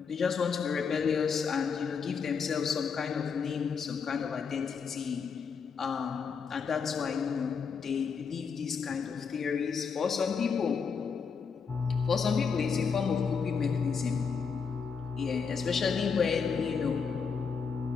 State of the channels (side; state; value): right; quieter; 5.9 dB